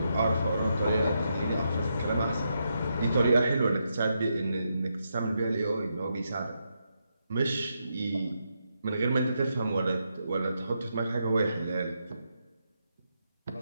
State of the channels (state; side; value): inverted; both; correlation -0.82